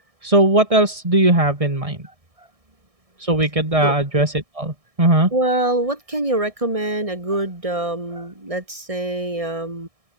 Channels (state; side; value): late; left; 1.6 ms